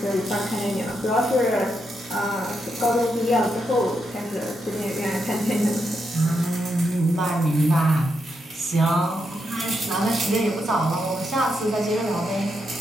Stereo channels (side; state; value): both; normal; correlation 0.82